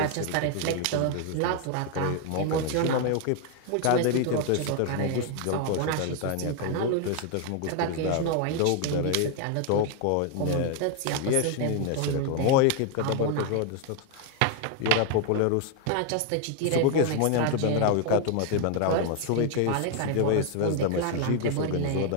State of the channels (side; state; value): both; different; correlation 0.00